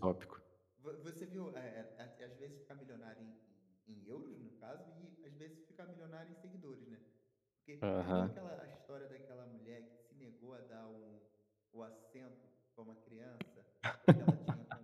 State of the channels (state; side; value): identical; both; correlation 1.00